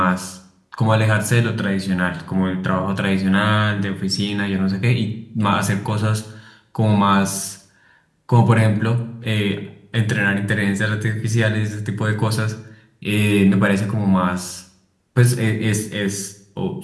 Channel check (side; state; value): both; identical; correlation 1.00